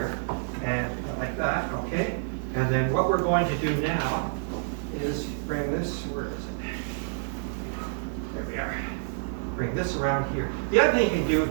and like that. Okay. And then what we're going to do now is bring this. Where is There we are. Bring this around here. The other thing you can do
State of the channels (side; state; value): left; silent; digital silence